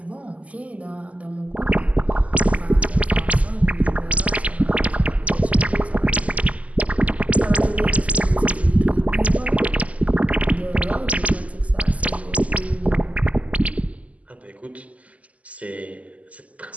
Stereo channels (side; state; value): left; late; 0.069 ms